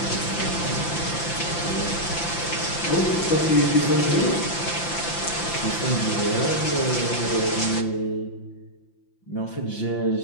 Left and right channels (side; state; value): right; late; 5.8 ms